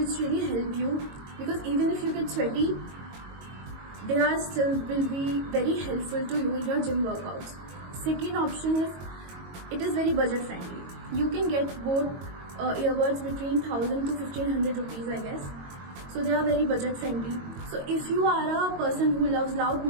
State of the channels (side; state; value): left; late; 22 ms